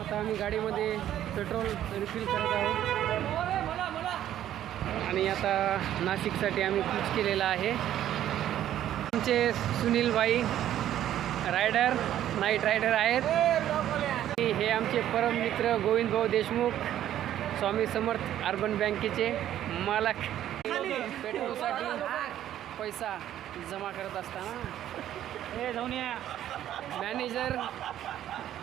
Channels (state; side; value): quieter; left; 11.8 dB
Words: आता आम्ही गाडीमध्ये पेट्रोल रिफिल करत आहोत आणि आता नाशिकसाठी आम्ही कूच केलेला आहे. आमचे सुनील भाई रायडर नाईट रायडर आहेत. हे आमचे परम मित्र गोविंद भाऊ देशमुख स्वामी समर्थ अर्बन बँकेचे मालक. पेट्रोलसाठी पैसा जमा करत असताना हे जाऊन या मॅनेजर